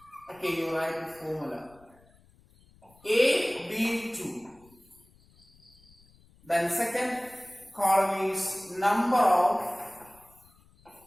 okay, you write the formula AB2. Then second column is number of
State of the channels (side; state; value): left; noise; rumble, 29 dB below the sound